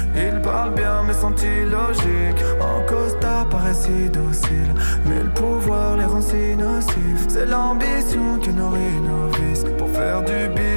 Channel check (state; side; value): inverted; both; correlation -1.00